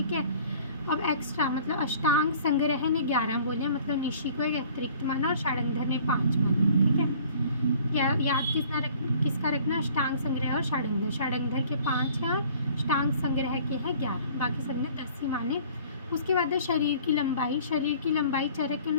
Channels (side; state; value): both; inverted; correlation -0.52